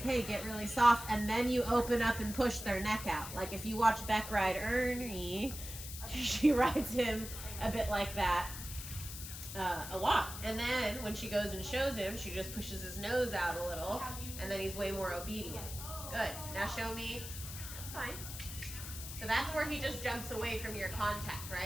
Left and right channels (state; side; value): noise; left; hiss, 9 dB below the sound